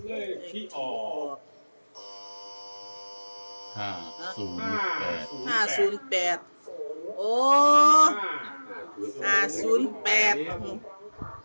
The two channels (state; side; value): inverted; both; correlation -1.00